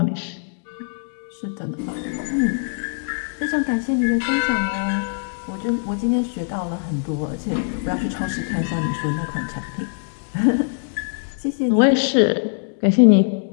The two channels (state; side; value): silent; right; digital silence